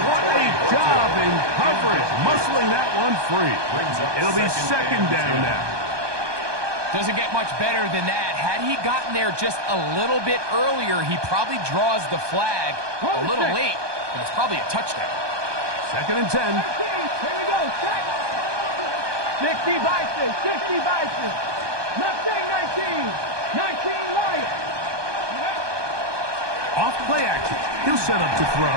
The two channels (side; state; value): left; late; 1.2 ms